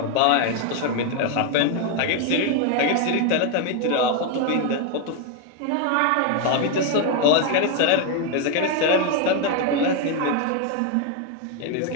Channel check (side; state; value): both; different; correlation 0.01